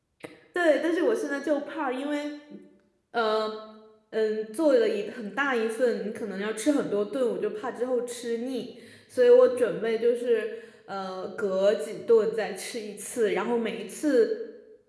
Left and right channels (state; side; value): identical; both; correlation 1.00